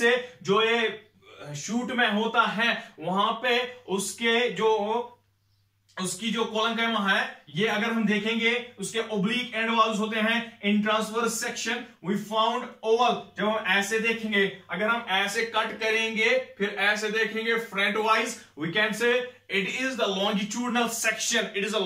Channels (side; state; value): both; identical; correlation 1.00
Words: जो ये शूट में होता है वहां पे उसकी जो coloncyma है, ये अगर हम देखेंगे उसके oblique end walls होते हैं. In transverse section we found oval. जब हम ऐसे देखेंगे, अगर हम ऐसे कट करेंगे फिर ऐसे देखेंगे front wise, we can say it is the longitudinal section. It is a